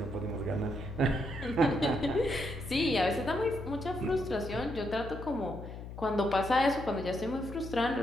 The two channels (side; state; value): left; noise; hum, 11 dB below the sound